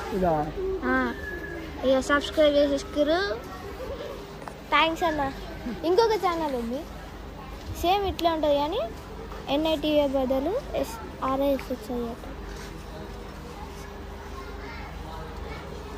ఇక సబ్స్క్రైబ్ చేసేసుకురు. థ్యాంక్స్ అన్న. ఇంకొక ఛానల్ ఉంది సేమ్ ఇట్లా ఉంటుంది కానీ NITA బదులు RISHI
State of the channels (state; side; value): identical; both; correlation 1.00